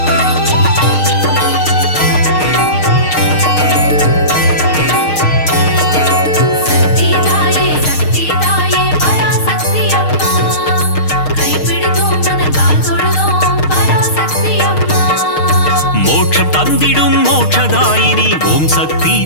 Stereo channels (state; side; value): late; right; 6.5 ms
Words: தந்திடும் மோட்சதாயினி ஓம் சக்தி